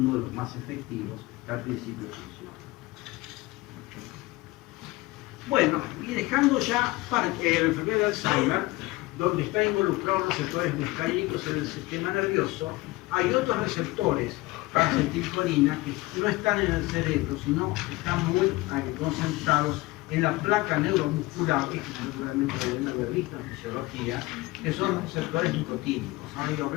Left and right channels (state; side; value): quieter; right; 20.5 dB